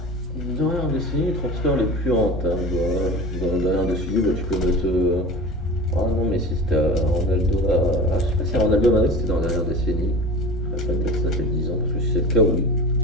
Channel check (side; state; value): both; normal; correlation 0.34